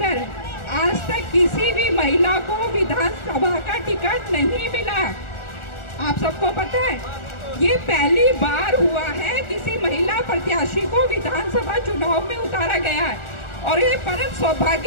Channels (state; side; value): late; right; 1.4 ms